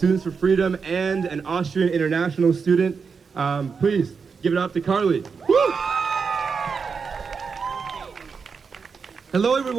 for Freedom and an Austrian international student. Please give it up to Karl. Hello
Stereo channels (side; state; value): left; quieter; 5.6 dB